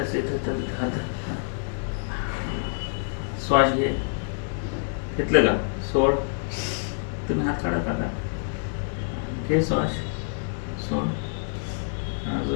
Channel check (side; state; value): right; silent; digital silence